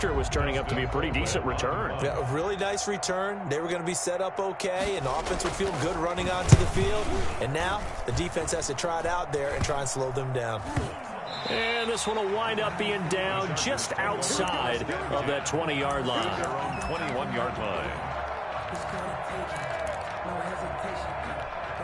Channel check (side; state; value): both; identical; correlation 1.00